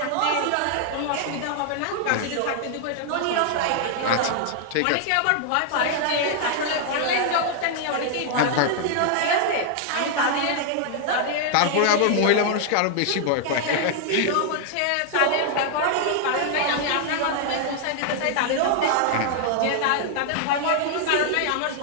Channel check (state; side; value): different; both; correlation 0.00